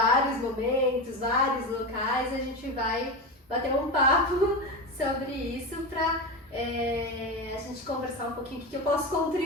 momentos, vários locais. A gente vai bater um papo sobre isso para a gente conversar um pouquinho o que eu posso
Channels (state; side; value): normal; both; correlation 0.20